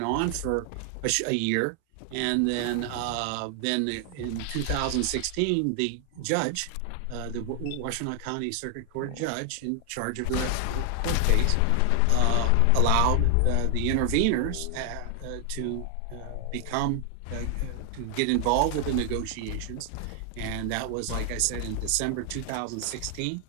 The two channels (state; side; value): different; both; correlation 0.00